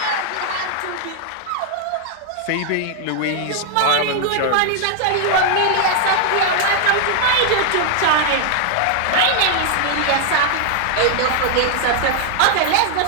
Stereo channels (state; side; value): different; both; correlation 0.00